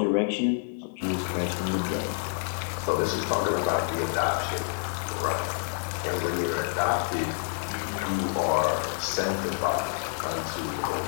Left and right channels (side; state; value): right; silent; digital silence